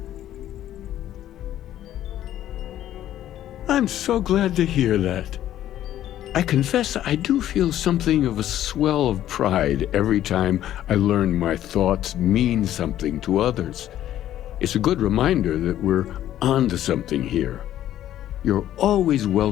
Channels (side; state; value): right; quieter; 12.3 dB